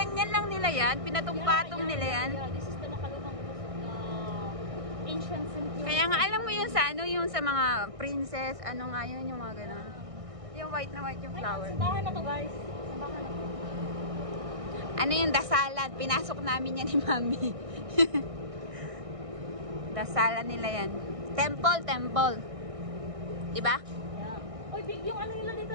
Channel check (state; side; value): late; left; 1.6 ms